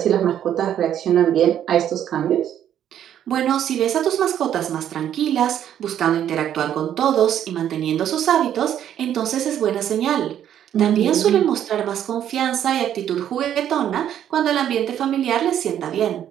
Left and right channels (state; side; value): quieter; left; 10.3 dB